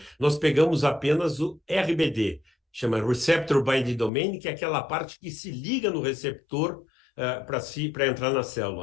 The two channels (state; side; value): drops out; right; at 4.1 s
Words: nós pegamos apenas o RBD, chama Receptor Binding Domain, que é aquela parte que se liga no receptor para entrar na